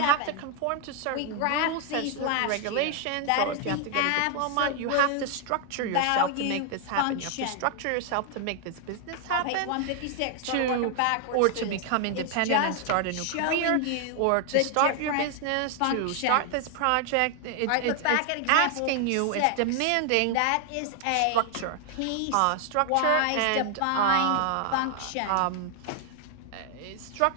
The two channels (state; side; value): different; both; correlation 0.00